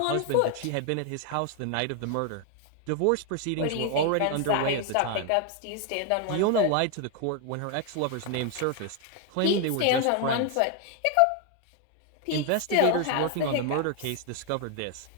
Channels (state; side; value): different; both; correlation 0.01